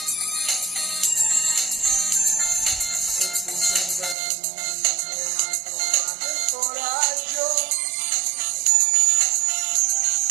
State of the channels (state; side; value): drops out; left; at 4.2 s